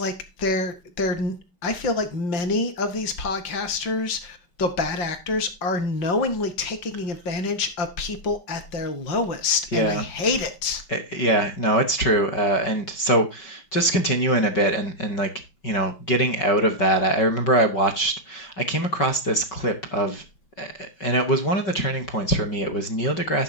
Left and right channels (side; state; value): right; late; 5.7 ms